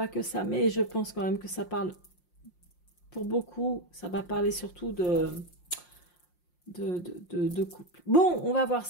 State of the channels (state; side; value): late; right; 5.6 ms